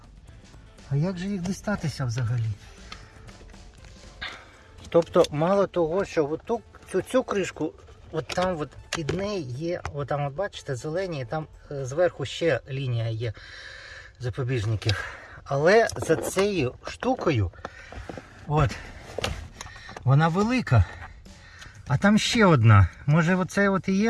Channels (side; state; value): both; identical; correlation 1.00